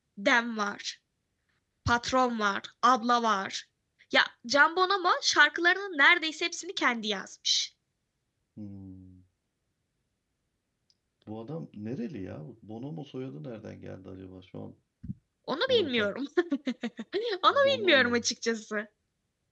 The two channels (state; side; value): identical; both; correlation 1.00